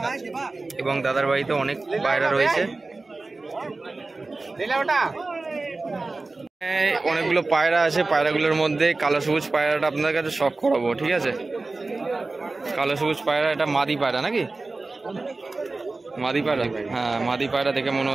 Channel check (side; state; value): left; quieter; 3.4 dB